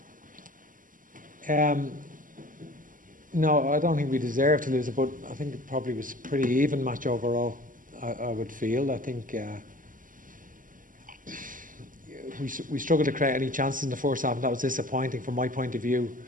have one? No, I don't think we deserve to lose it, but I think it probably was a pretty even match overall, I would feel. I think we struggled to create any chances in the first half, and that was disappointing from my point of view.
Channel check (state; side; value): late; left; 0.39 ms